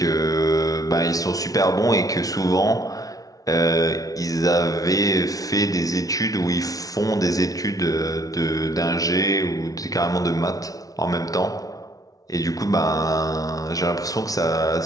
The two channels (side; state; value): right; late; 0.18 ms